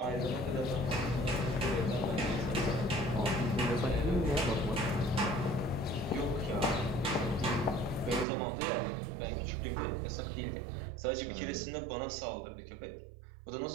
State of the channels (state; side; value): drops out; left; at 8.2 s